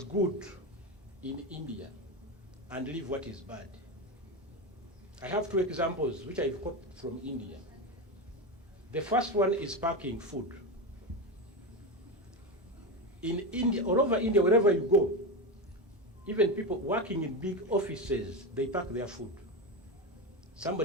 good in India and leave what is bad. I have two examples which I've copied from India. The first one is packing food. In India, all over India, wherever you go, even people working in big offices, they pack their food.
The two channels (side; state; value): both; normal; correlation 0.17